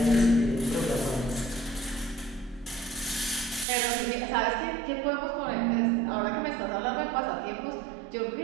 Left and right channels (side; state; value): left; drops out; at 3.7 s